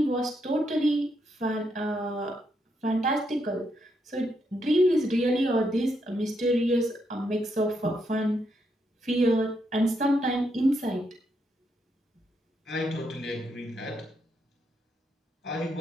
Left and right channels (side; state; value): both; normal; correlation 0.79